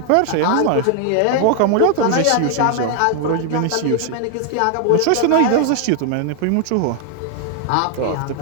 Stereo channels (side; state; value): both; different; correlation 0.00